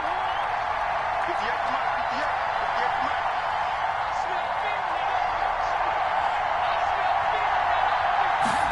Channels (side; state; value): both; identical; correlation 1.00